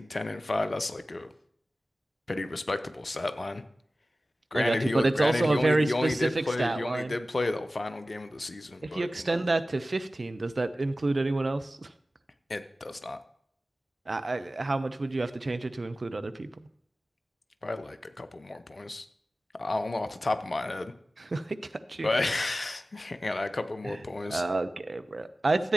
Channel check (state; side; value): normal; both; correlation 0.96